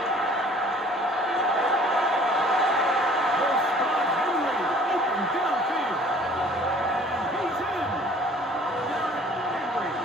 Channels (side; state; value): both; normal; correlation 0.52